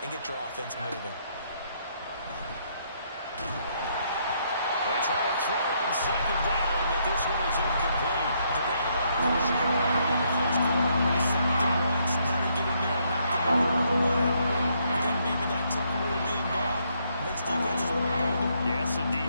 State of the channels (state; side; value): inverted; both; correlation -0.73